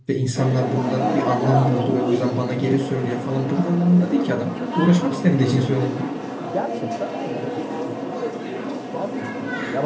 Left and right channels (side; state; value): both; identical; correlation 1.00